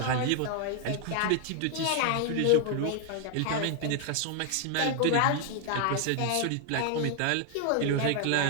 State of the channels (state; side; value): different; both; correlation 0.00